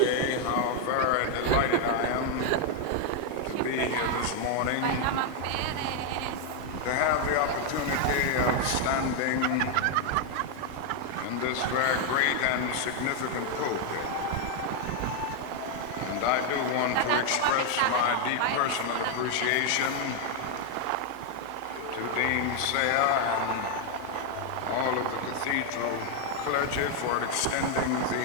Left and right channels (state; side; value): different; both; correlation 0.00